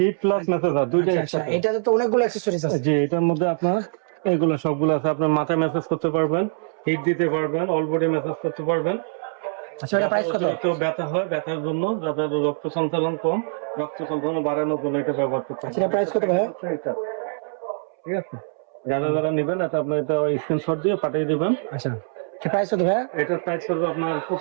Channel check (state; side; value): silent; left; 63 dB below the other